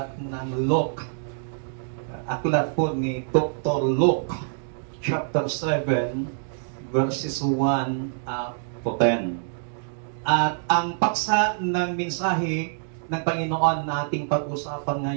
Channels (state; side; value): silent; left; digital silence